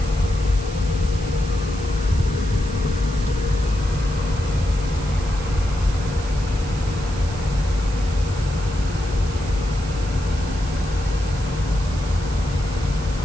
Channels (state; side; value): noise; right; hiss, 16 dB below the sound